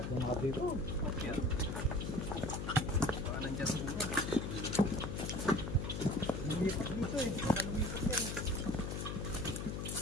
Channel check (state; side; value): noise; left; hum, 3 dB below the sound